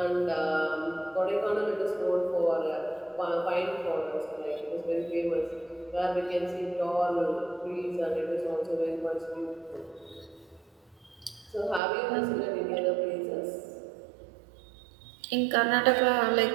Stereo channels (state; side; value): drops out; left; at 11.8 s